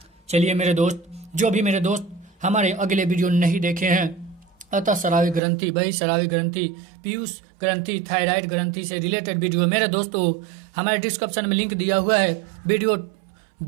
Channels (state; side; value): drops out; left; at 5.4 s